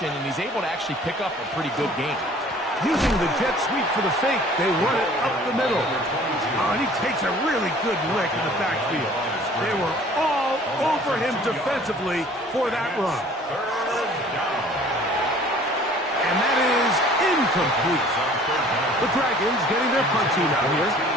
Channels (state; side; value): normal; both; correlation 0.51